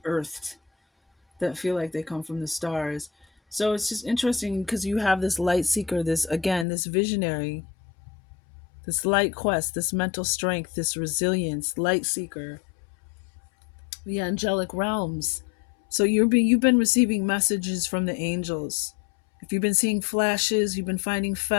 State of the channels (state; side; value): drops out; right; at 6.7 s